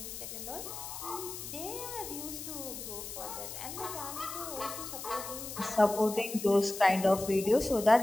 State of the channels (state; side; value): noise; left; hiss, 9 dB below the sound